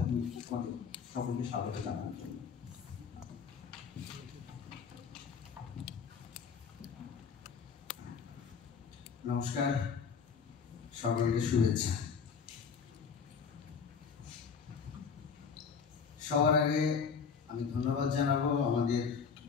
দিয়ে আমাদের সকলকে স্বাগত জানানোর জন্য। নমস্কার, সকলকে শুভেচ্ছা। সবার আগে আমি ধন্যবাদ জানাবো আমাদের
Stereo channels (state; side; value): quieter; right; 6.1 dB